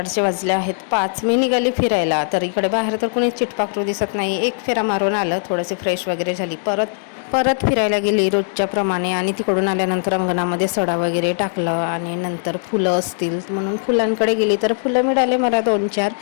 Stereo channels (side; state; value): right; silent; digital silence